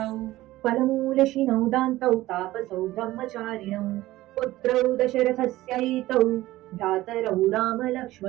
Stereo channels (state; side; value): quieter; left; 16.8 dB